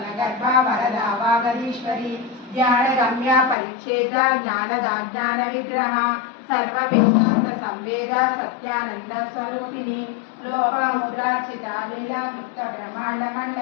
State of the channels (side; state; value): right; drops out; at 3.6 s